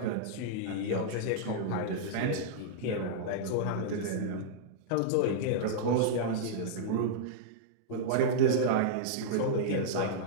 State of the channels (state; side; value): different; both; correlation -0.02